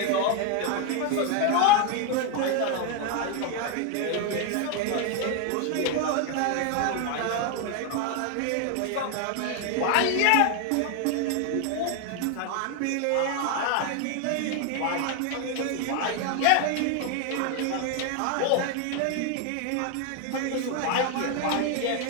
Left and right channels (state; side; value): different; both; correlation 0.01